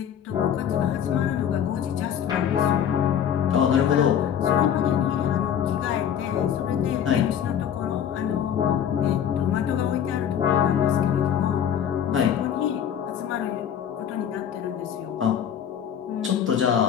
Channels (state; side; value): quieter; right; 9.0 dB